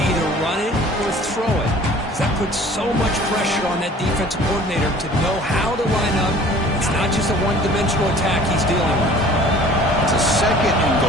either run it or throw it. Because that puts so much pressure on that defensive coordinator to know how to line up. It's not just a one-dimensional attack he's dealing with. It's a 2nd and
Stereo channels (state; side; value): normal; both; correlation 0.48